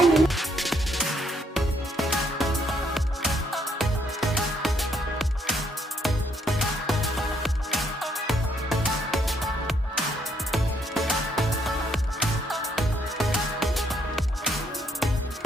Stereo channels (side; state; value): both; normal; correlation 0.71